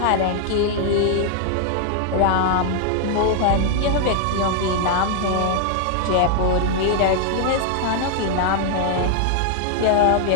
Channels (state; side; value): different; both; correlation 0.00